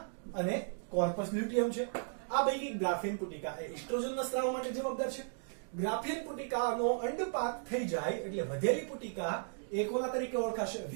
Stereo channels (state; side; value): silent; left; digital silence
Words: અને કોર્પસ લ્યુટિયમ છે. આ પૈકી ગ્રાફિયન પુટિકા એ એસ્ટ્રોજનના સ્ત્રાવ માટે જવાબદાર છે. ગ્રાફિયન પુટિકાનો અંડપાક થઈ જાય એટલે વધેલી પુટિકા એ કોના તરીકે ઓળખાશે?